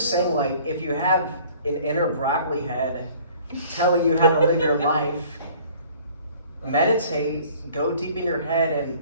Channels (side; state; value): both; inverted; correlation -0.53